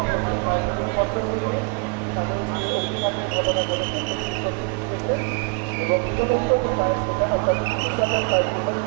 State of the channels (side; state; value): left; quieter; 34.4 dB